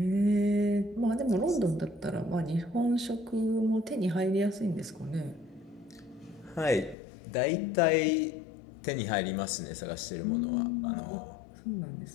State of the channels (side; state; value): right; drops out; at 7.0 s